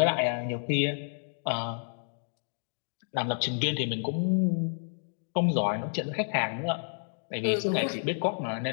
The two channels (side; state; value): right; silent; digital silence